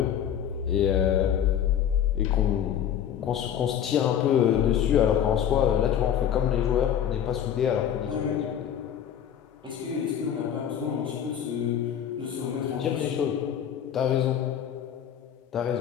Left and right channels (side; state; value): right; quieter; 9.4 dB